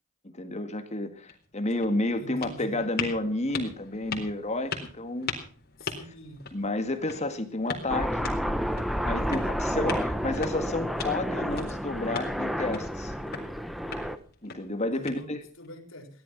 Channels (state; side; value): normal; both; correlation 0.59